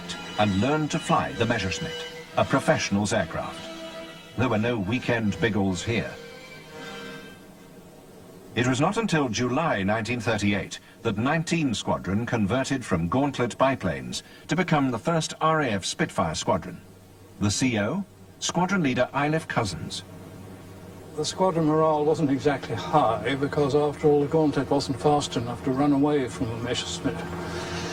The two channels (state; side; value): identical; both; correlation 1.00